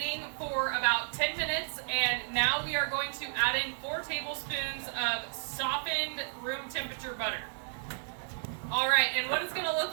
for about 10 minutes, and now we are going to add in 4 tablespoons of softened room temperature butter. All right, and what it's gonna look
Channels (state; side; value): silent; left; digital silence